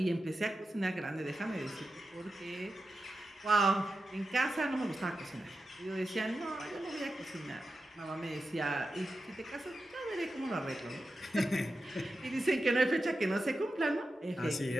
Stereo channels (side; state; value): both; normal; correlation 0.91